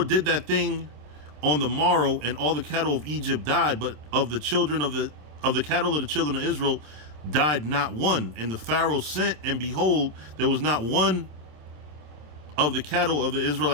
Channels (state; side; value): late; left; 27 ms